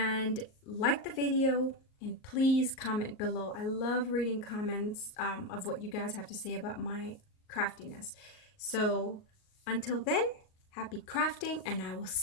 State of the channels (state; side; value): late; right; 38 ms